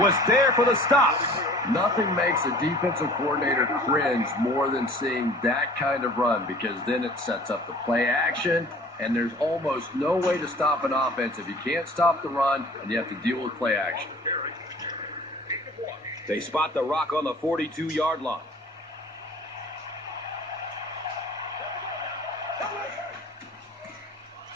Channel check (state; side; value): normal; both; correlation 0.47